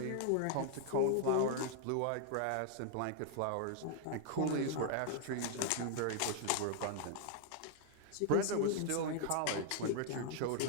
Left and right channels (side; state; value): both; different; correlation 0.00